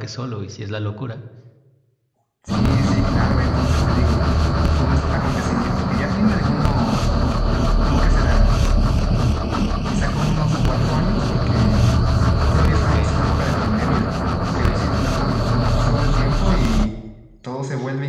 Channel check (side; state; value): both; identical; correlation 1.00